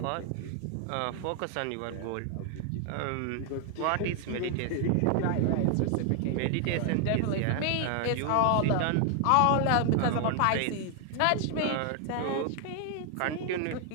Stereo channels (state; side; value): different; both; correlation 0.00